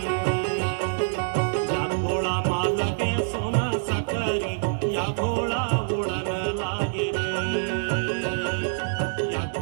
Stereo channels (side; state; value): left; silent; 61 dB below the other